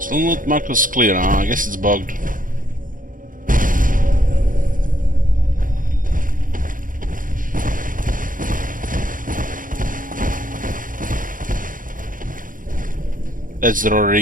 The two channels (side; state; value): left; late; 0.39 ms